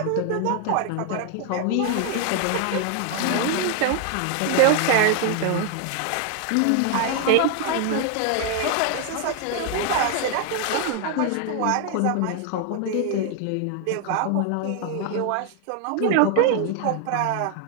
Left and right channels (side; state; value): both; different; correlation 0.00